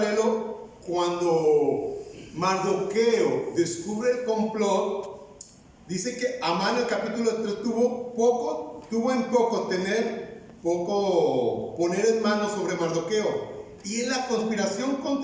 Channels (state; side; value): identical; both; correlation 1.00